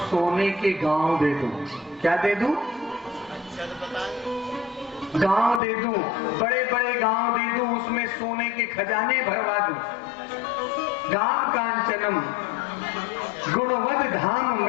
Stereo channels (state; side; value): drops out; right; at 5.6 s